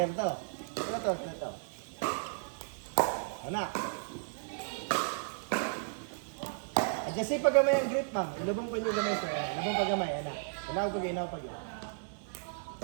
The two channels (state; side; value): silent; left; digital silence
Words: to. Ito. Ano? Adjustin pag gamay ang grip, ma'am. Ilubong pa niyo gamay, sir. Ilubong pag gamay, ana. Inaw pag.